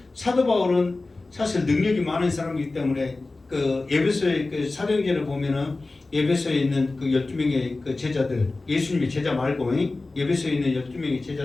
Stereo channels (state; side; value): quieter; right; 3.3 dB